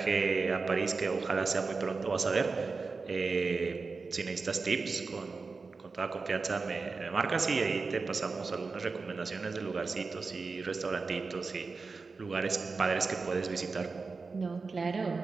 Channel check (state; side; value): quieter; left; 4.3 dB